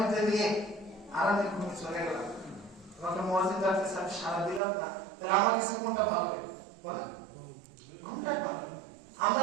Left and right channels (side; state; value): left; drops out; at 4.6 s